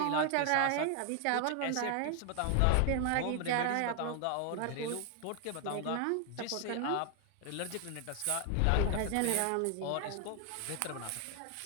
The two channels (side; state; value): both; different; correlation 0.00